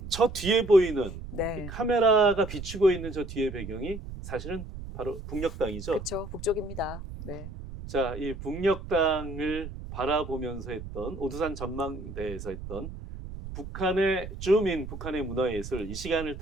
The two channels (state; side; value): noise; right; rumble, 10 dB below the sound